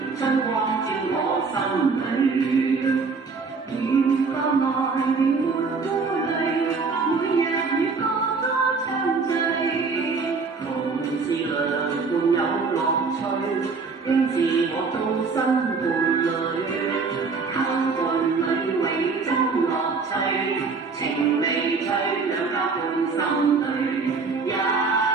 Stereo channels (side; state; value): left; quieter; 4.6 dB